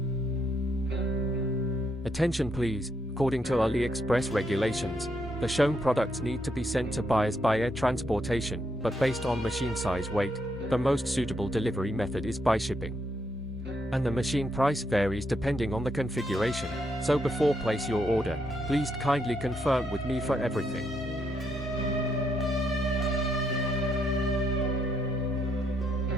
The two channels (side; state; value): both; normal; correlation 0.77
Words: Attention please, according to AliExpress regulations, the shown products need to be sent to buyers by air transportation, but based on machine size weight, the most suitable delivery method is by shipping. And the machine price varies depending on the configuration, so before place your order, please kindly confirm with me for everything.